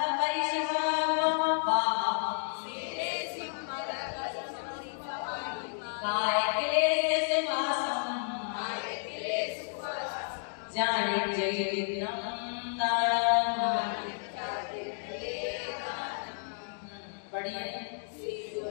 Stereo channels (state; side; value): silent; right; digital silence